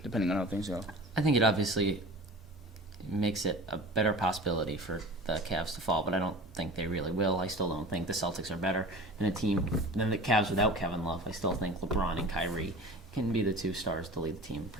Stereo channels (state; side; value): normal; both; correlation 0.38